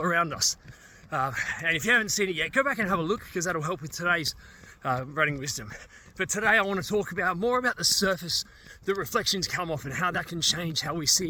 around us. And if you haven't seen it yet, go back and have a look because that'll help with today's running wisdom. But today I want to talk more about the surface that reflections come off and how that can change how we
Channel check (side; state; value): both; identical; correlation 1.00